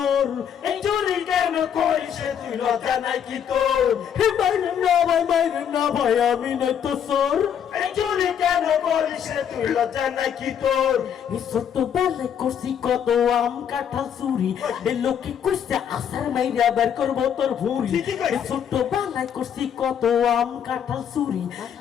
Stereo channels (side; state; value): right; quieter; 8.5 dB